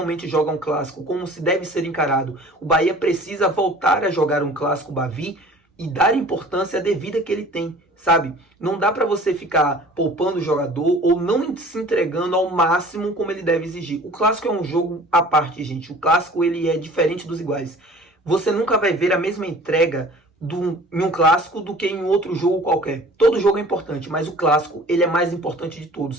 joga um clássico, como se deve ser encarado. O Bahia precisa voltar a jogar um clássico Bavi e dar a importância devida que ele tem, sabe? Não dá para você ficar poupando o jogador ou não se entregando ao máximo como ele deve exigir. O clássico é um jogo à parte, gente. O clássico ele é diferente dos iguais. Você nunca vai ver a mesma entrega em um clássico do que em outro jogo qualquer. Todo jogo é importante, mas o clássico ele é mais importante de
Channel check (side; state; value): both; normal; correlation 0.46